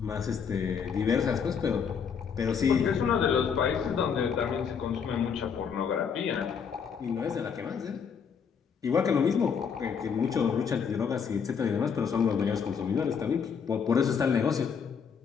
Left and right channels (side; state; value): right; quieter; 6.7 dB